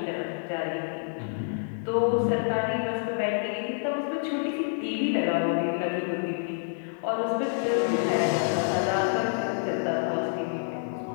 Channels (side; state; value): right; silent; 58 dB below the other